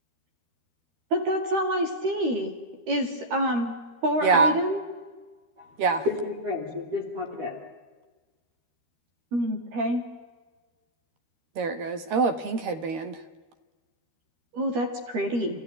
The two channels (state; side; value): late; left; 13 ms